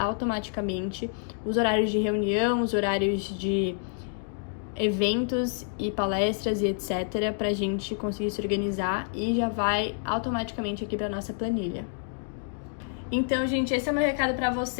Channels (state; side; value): silent; right; digital silence